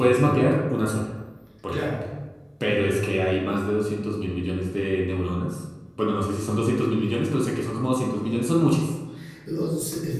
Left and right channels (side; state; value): both; identical; correlation 1.00